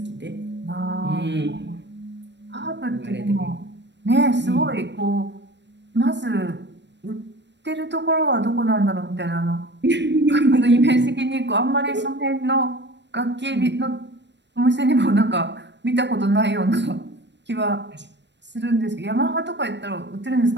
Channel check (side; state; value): left; late; 0.51 ms